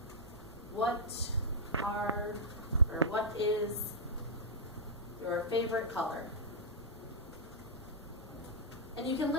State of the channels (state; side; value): normal; both; correlation -0.09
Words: What is your favorite color? And you can